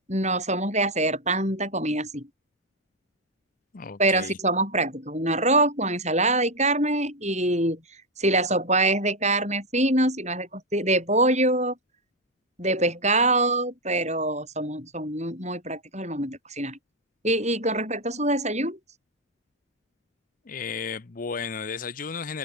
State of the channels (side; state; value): both; normal; correlation 0.04